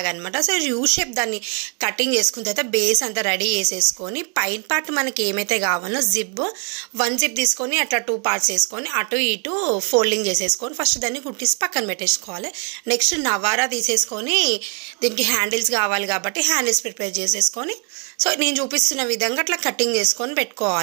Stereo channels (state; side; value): quieter; left; 37.4 dB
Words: అనమాట. సో యూ షేప్ దాన్ని కటింగ్ చేసుకున్న తర్వాత బేస్ అంతా రెడీ చేసేసుకొని పైన పార్ట్ మనకి ఏమైతే కావాలో వన్ జిప్ తీసుకొని అట్లా 2 పార్ట్స్ వేసుకొని అటు ఇటు ఫోల్డింగ్ చేసేసుకొని ఫస్ట్ దాన్ని కుట్టిసి పక్కన పెట్టేసుకోవాలి. నెక్స్ట్ నవారా తీసేసుకొని దీనికి హ్యాండిల్స్ కావాలి కాబట్టి హ్యాండిల్స్ ప్రిపేర్ చేసేసుకొని సో నేను చూపిస్తున్న విధంగా అట్లా కటింగ్ చేసుకొని